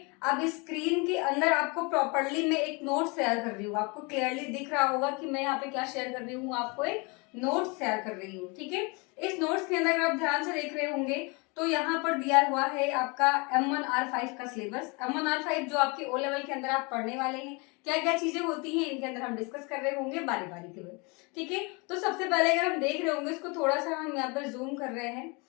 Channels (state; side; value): quieter; right; 29.5 dB